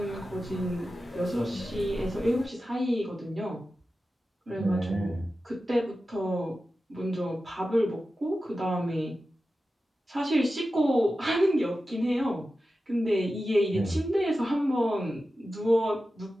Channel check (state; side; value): normal; both; correlation 0.93